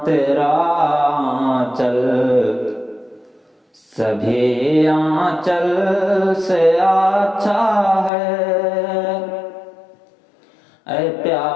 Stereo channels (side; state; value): right; drops out; at 8.1 s